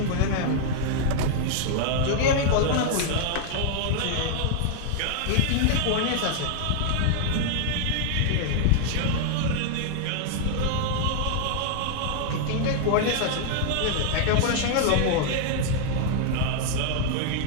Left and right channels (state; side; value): different; both; correlation 0.00